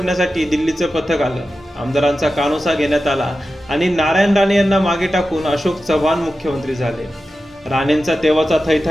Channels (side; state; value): both; normal; correlation 0.93